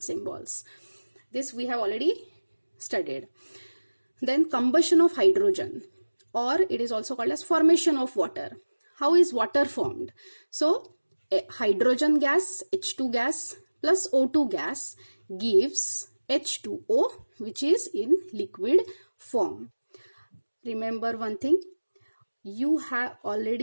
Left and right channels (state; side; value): inverted; both; correlation -1.00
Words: symbols. This we have already studied. Then combustion of hydrogen, or it is also called as formation of water. How is water formed? So hydrogen gas, H2 gas plus O2 gas gives H2O, which is in liquid form. Remember one thing, you have